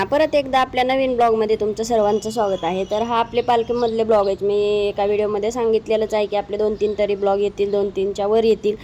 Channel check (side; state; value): both; identical; correlation 1.00